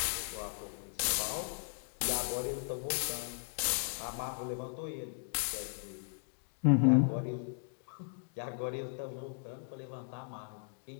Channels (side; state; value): right; silent; digital silence